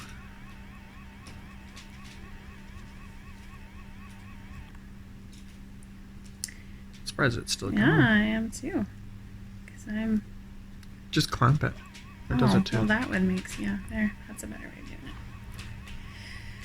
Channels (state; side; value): identical; both; correlation 1.00